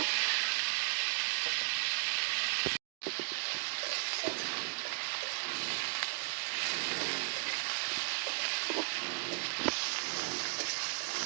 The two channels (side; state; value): left; silent; digital silence